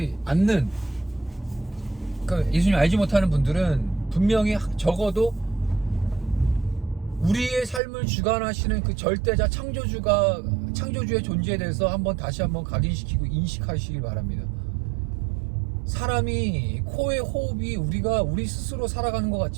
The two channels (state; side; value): drops out; left; at 7.8 s